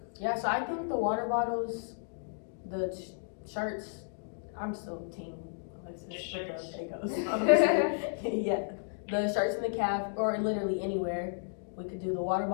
Yeah, so I think the water bottles, the shirts, I'm still team Alexis The with shirts. the Fagos. Yeah, the shirts in the calf or literally anywhere. We could do the water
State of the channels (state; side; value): silent; right; digital silence